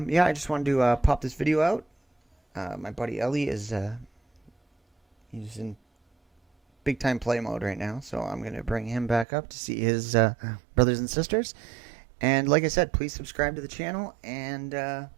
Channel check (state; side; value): drops out; left; at 9.2 s